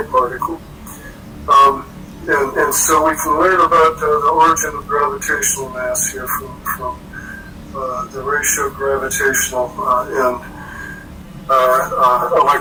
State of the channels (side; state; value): both; identical; correlation 1.00